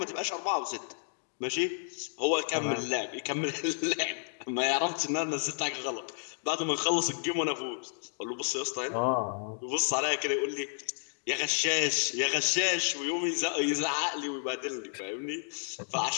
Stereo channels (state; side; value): silent; right; digital silence